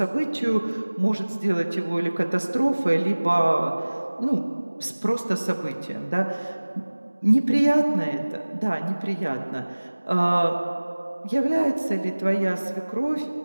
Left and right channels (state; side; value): inverted; both; correlation -1.00